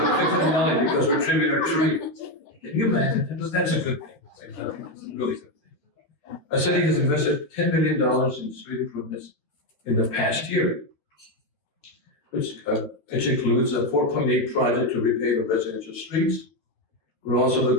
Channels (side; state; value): right; late; 13 ms